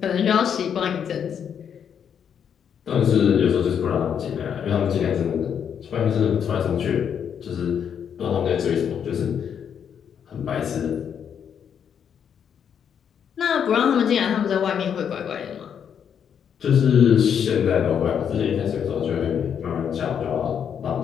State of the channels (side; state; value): right; quieter; 8.0 dB